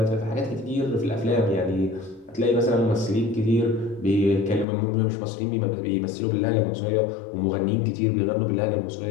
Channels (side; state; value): right; drops out; at 4.7 s